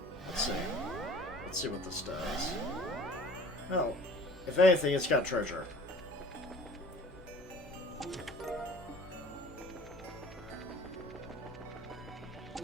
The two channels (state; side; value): normal; both; correlation 0.47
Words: Let's see. Let's see what this does. Oh, if anything, it's got treasure.